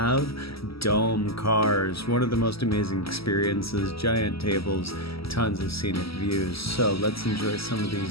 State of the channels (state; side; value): late; right; 0.76 ms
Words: dome cars. One of the most amazing experiences, giant tables, tons of scenic views. So let's enjoy some of